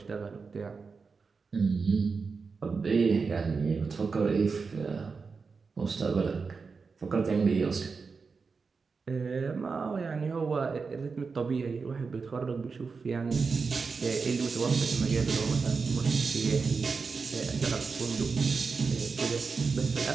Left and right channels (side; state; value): left; quieter; 4.9 dB